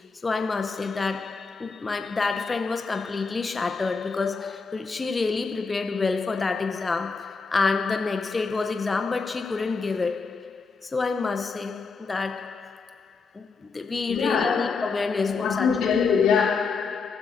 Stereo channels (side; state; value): right; quieter; 4.7 dB